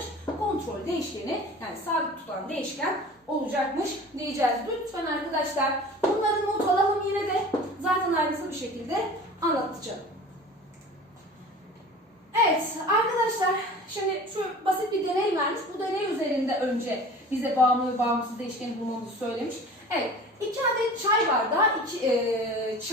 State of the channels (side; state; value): both; normal; correlation 0.40